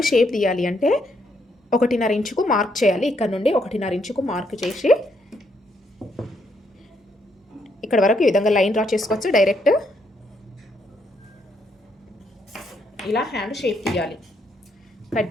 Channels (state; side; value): normal; both; correlation 0.75